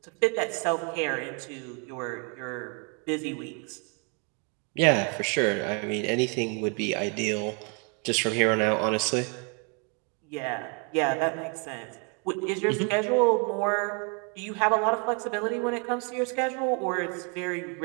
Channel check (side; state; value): left; quieter; 35.6 dB